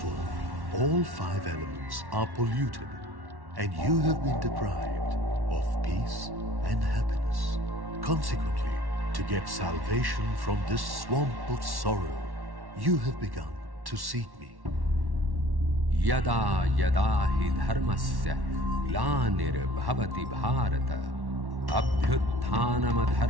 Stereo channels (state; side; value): late; left; 1.1 ms